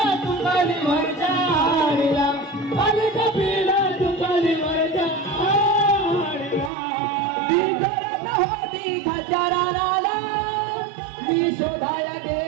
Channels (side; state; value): left; drops out; at 6.7 s